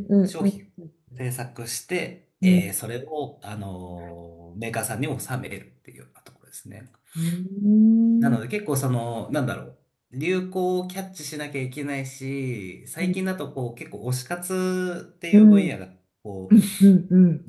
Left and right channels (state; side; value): identical; both; correlation 1.00